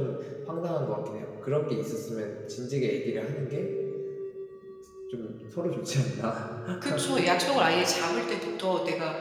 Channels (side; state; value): both; identical; correlation 1.00